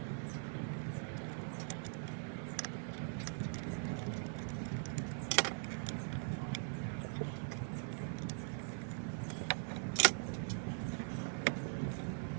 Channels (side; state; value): left; silent; digital silence